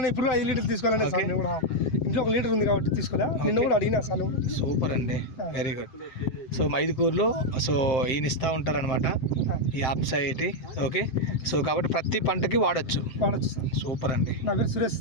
ఇప్పుడు 5 లీటర్లు తీసుకోవాలని సార్. నేను కూడా ఇంట్లో 1 లీటర్ ఉంది కాబట్టి తీసుకోలే. నిన్న కూడా అడిగినా సార్. సూపర్ అండి, వెరీ గుడ్. సో మైదుకూరులో సో ఈయన ఇస్తూ ఉంటారనమాట ఈ ఆప్సైటీ. ఓకే, సో కాబట్టి ప్రతి పంటకి వాడచ్చు సార్. సూపర్ అండి. నా పేరు సురేష్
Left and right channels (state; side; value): late; right; 7.7 ms